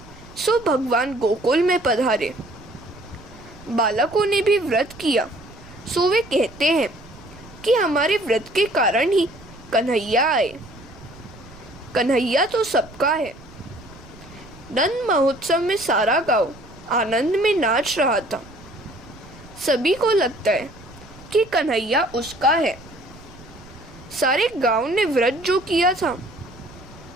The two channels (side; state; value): right; noise; rumble, 21 dB below the sound